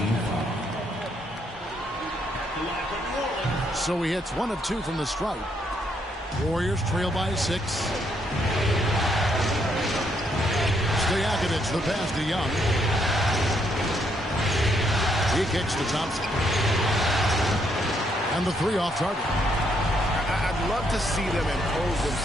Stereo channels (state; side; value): normal; both; correlation 0.73